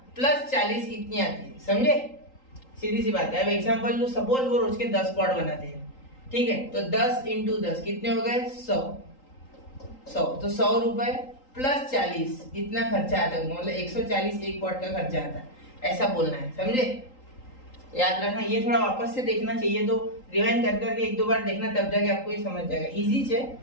प्लस 40 इतनी आती है, समझे? सीधी सी बात है। अब एग्जांपल लो, सपोज वो रोज के 10 पॉट बनाते हैं, ठीक है। तो 10 इंटू 10 कितने हो गए? 100। तो 100 रुपए प्लस 40 इतना खर्चा आता है, मतलब 140 एक पॉट का खर्चा आता है, ऐसा बोलना है, समझे? याद रखना। ये थोड़ा वापस से देखना चाहिए, तो रिवाइंड कर करके 1-2 बार देखना, तब जाके आपको ये समझ जाएगा। इजी है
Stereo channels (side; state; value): right; late; 3.8 ms